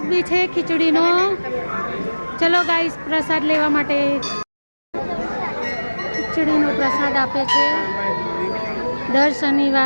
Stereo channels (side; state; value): both; inverted; correlation -1.00